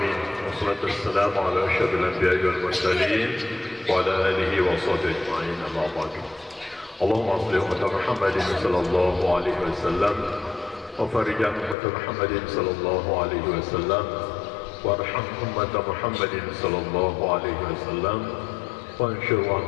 Wassalatu wassalamu ala asyrafil anbiya'i wal mursalin wa ala alihi wa sahbihi ajma'in. Amma ba'du. Allahumma shalli ala Muhammadin sallallahu alaihi wasallam wa farij an Muhammadin sallallahu alaihi wasallam warham ummat Muhammadin sallallahu alaihi wasallam. وانشر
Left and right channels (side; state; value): right; drops out; at 11.8 s